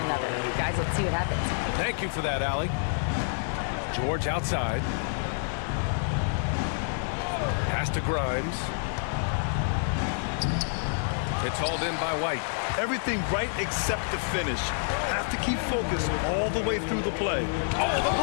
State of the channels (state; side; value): silent; right; 59 dB below the other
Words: Guys, let's see what happens. Thank you for that, Allie. George outside. Pass to Grimes. It's hauled in by White. Everything right except the finish. Have to keep focused all the way through the play. Oh, the